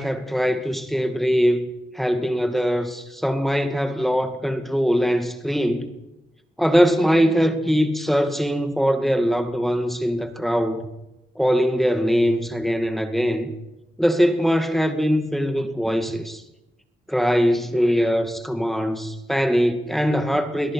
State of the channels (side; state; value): both; normal; correlation 0.94